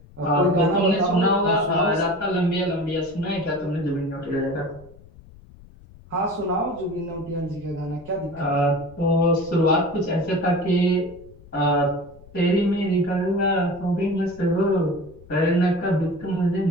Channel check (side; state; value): left; noise; rumble, 22 dB below the sound